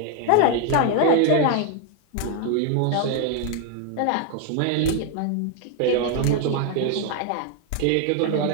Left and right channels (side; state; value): both; different; correlation 0.00